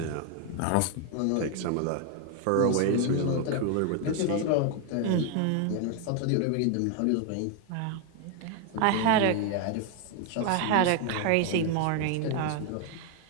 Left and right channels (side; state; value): both; different; correlation 0.01